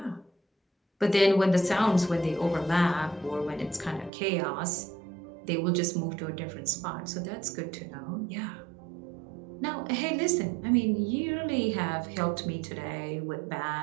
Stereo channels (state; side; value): drops out; left; at 4.1 s